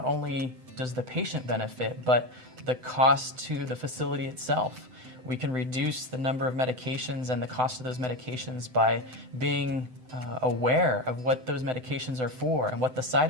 only does the patient benefit, but the cost to the facility itself. We can reduce the number of medications and the cost of those medications by being aware of what those medications are for and what the side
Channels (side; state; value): left; late; 7.9 ms